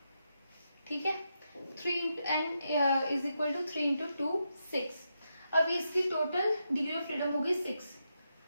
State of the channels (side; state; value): both; inverted; correlation -0.84